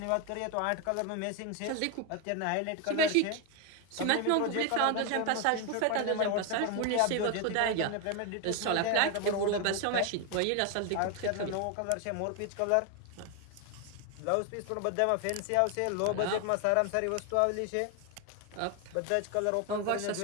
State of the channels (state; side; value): different; both; correlation 0.01